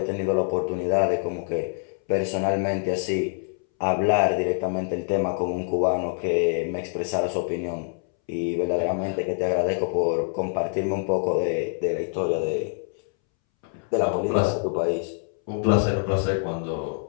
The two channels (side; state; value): right; silent; 61 dB below the other